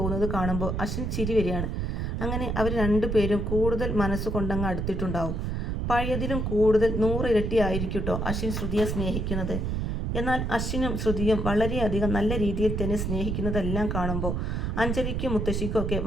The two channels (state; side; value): noise; right; rumble, 1 dB below the sound